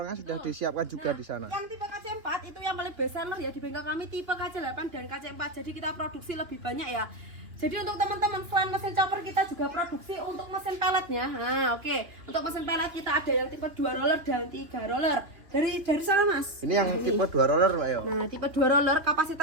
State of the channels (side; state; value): left; late; 3.0 ms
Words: sudah disiapkan juga di sana. Yang tipe KC4 itu yang paling best seller ya di bengkel kami, tipe KC8 dan KC4. Jadi kita produksi lebih banyak ya. Jadi untuk teman-teman selain mesin chopper kita juga produksi untuk mesin pelletnya. Nah, oke. Untuk mesin pellet kita ada yang tipe 2 roller dan 3 roller. Dari sana Mas. Ini yang tipe 2 roller Mbak ya. Nah, tipe 2 roller